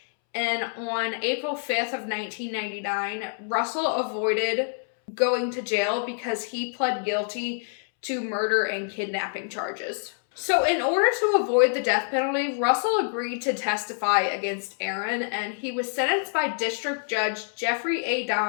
And on April 5th of 1999, Russell avoided going to jail because he pled guilty to murder and kidnapping charges. So in order to avoid the death penalty, Russell agreed to testify against Aaron, and he was sentenced by District Judge Jeffrey A.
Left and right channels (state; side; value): silent; right; 61 dB below the other